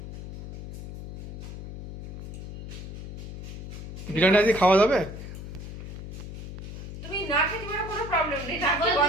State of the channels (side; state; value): left; noise; hum, 10 dB below the sound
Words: বিরিয়ানি আজকে খাওয়া যাবে? তুমি না খেতে পারো কোনো প্রবলেম নেই, নাকি